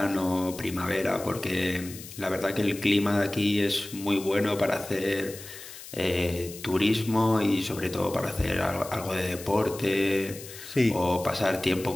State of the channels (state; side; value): noise; left; hiss, 14 dB below the sound